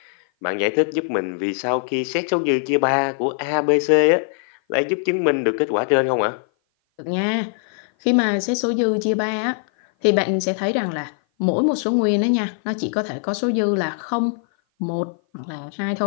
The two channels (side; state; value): right; silent; 56 dB below the other